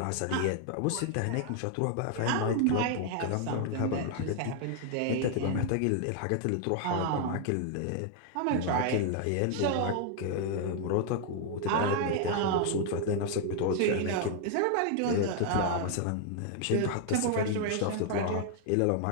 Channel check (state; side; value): different; both; correlation 0.00